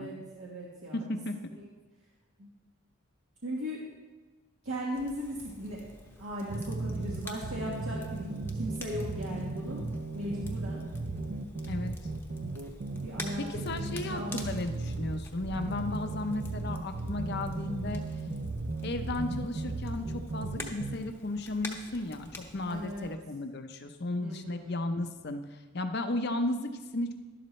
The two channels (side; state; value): both; normal; correlation 0.60